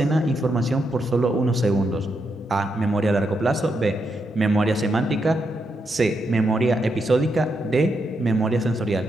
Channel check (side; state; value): both; normal; correlation 0.82